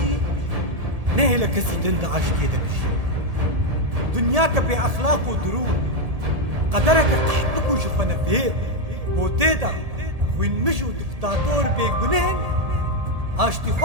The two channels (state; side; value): late; left; 1.7 ms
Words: نه لکسی دند عاشتی ده بجی دنیا که بی اخلاق و درون قدرك قحبك وشفنا فيه وتيدا وين مشوا دكتاتور بيقنهن اشتي